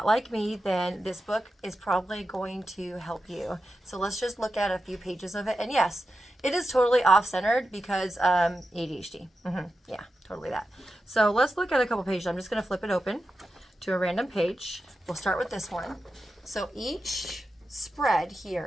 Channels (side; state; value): both; normal; correlation 0.91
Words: like me, then this book is probably going to help you. So let's just look at a few pages of it. And yes, it is totally off-centered because ADHD. Yeah, totally that. So let's look at a couple pages. I'm just going to flip it open to a random page. We'll start with this one. So each spread